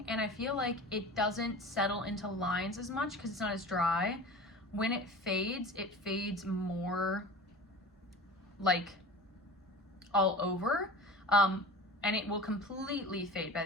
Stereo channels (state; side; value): normal; both; correlation 0.36